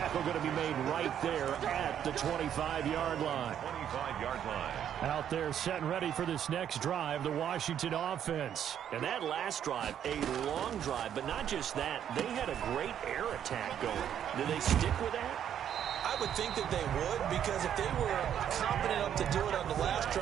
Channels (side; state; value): left; quieter; 9.6 dB